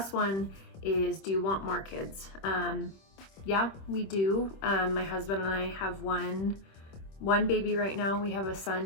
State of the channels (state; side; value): late; right; 26 ms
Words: one is, do you want more kids? Yeah, we do. My husband and I have one baby right now. We have a